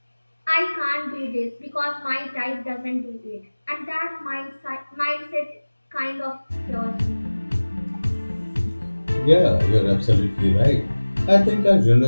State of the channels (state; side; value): inverted; both; correlation -1.00